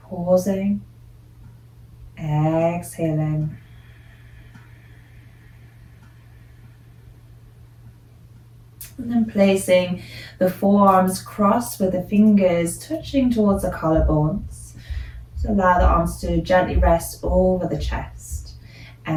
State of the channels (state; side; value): identical; both; correlation 1.00